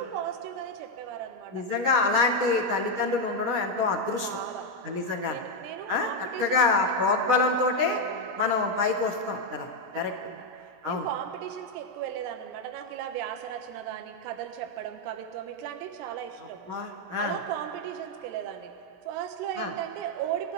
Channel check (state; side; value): late; left; 17 ms